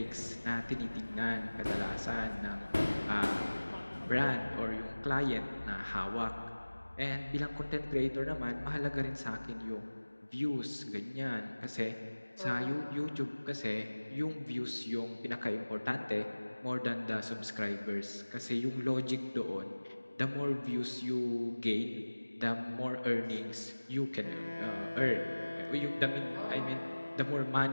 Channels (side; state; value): both; inverted; correlation -1.00